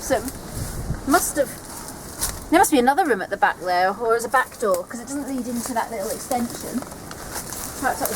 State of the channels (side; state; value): both; identical; correlation 1.00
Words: it must have... There must be another room at the back there, or as a back door, because it doesn't lead into that little extension. Perhaps that